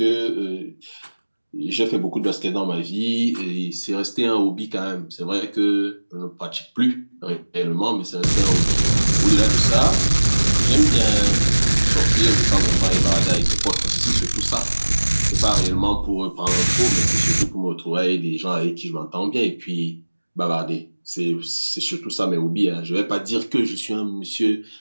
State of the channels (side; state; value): both; inverted; correlation -1.00